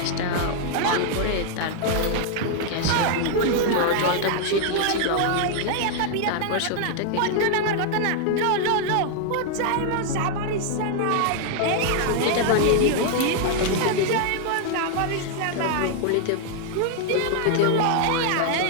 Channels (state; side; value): different; both; correlation 0.00